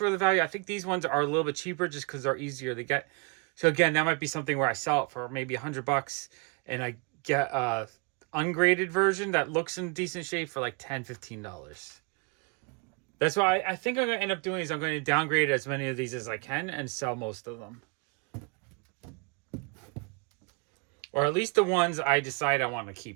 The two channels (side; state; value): left; quieter; 31.9 dB